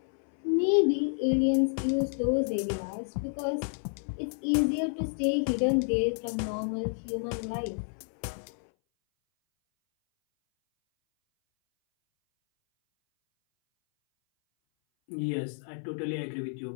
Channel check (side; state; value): right; silent; 58 dB below the other